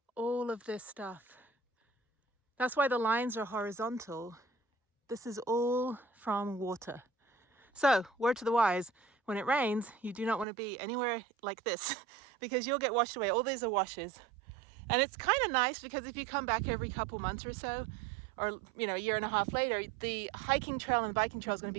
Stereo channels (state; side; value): drops out; left; at 10.5 s